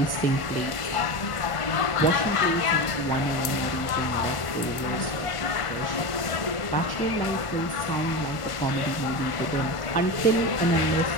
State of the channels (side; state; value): right; late; 1.5 ms